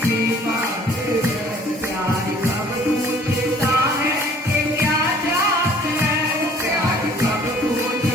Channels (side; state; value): both; normal; correlation 0.54